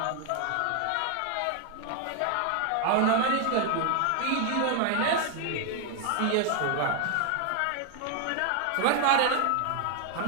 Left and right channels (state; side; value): different; both; correlation 0.00